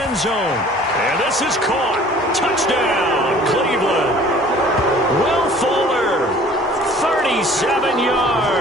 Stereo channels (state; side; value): normal; both; correlation 0.50